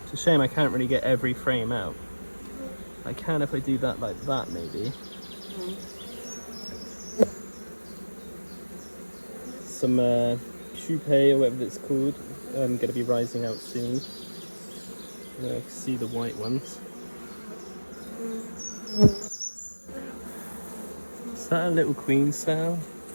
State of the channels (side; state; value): both; inverted; correlation -1.00